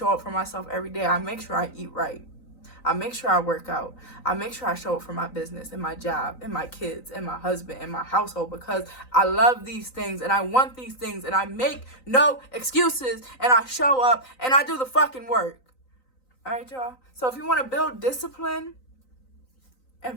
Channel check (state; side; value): late; right; 3.9 ms